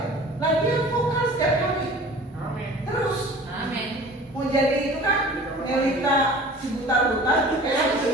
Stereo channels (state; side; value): normal; both; correlation 0.44